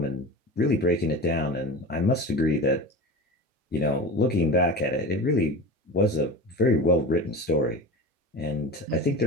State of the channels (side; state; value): both; normal; correlation 0.30